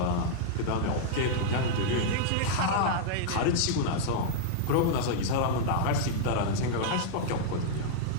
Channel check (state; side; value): different; both; correlation -0.02